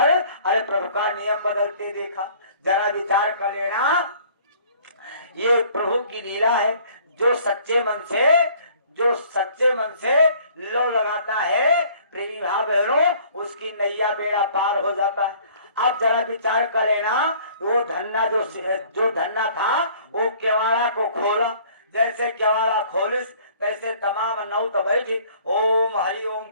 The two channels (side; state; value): both; inverted; correlation -0.55